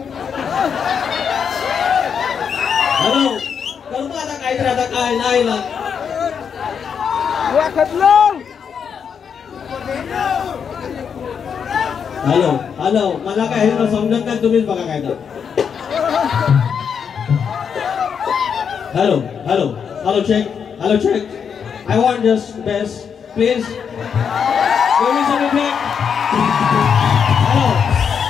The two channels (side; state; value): right; quieter; 7.0 dB